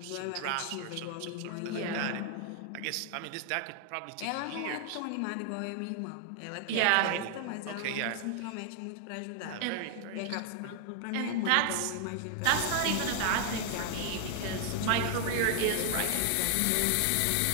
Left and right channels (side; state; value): both; different; correlation 0.00